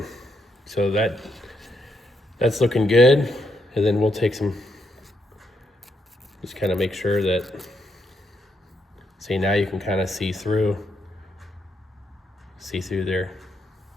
So that's looking good. And then we'll take some, just kind of make sure that, see, now you can kind of see through there.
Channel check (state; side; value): normal; both; correlation 0.78